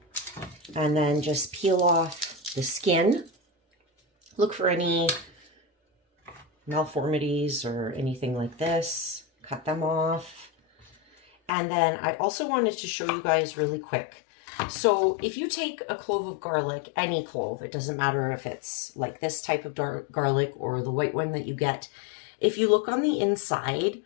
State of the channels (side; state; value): right; drops out; at 11.5 s